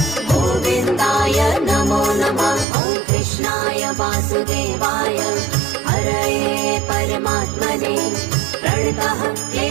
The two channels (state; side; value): drops out; left; at 2.7 s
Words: गोविन्दाय नमो नमः। ॐ कृष्णाय वासुदेवाय हरये परमात्मने प्रणतः